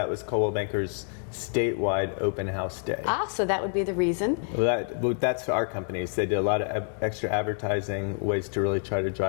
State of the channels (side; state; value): right; silent; 60 dB below the other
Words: was Coldwell Banker's statewide open house day. So that would be the reason. Well, that's our companies. They did a lot of extra advertising, ways to really try to